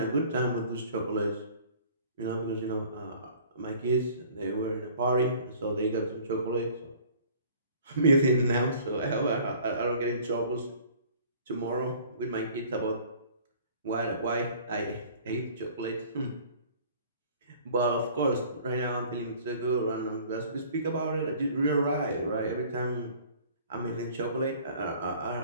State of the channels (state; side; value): inverted; both; correlation -0.50